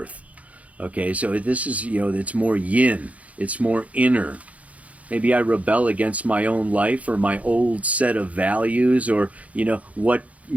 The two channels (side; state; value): left; late; 0.068 ms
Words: Okay, so this is, it's more yin, it's more inner. Maybe I rebel against my own life or my old set of values, or, what,